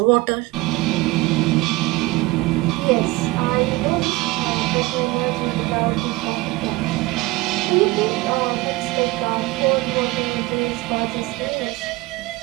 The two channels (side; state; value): left; quieter; 20.6 dB